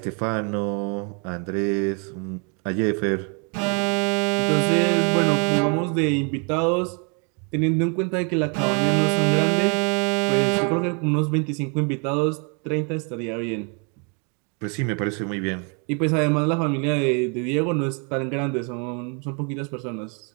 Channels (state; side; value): quieter; left; 36.7 dB